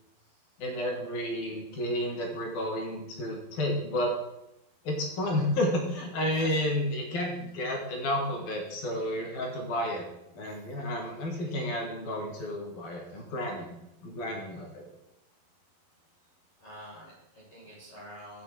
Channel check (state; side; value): late; right; 12 ms